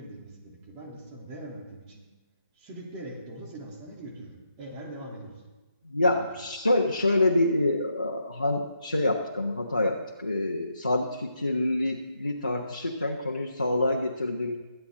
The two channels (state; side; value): inverted; both; correlation -0.80